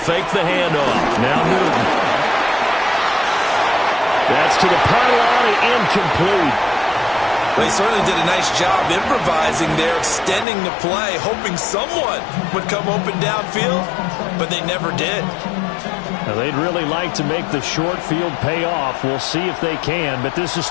fake the handoff. Now Newton. That's to the pylon and incomplete. They certainly did a nice job improvising there, extending the play, hoping someone would come open downfield, but they never did. Now, they'd really like to make the short field pay off. We'll see if they can, but this is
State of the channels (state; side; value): drops out; right; at 10.5 s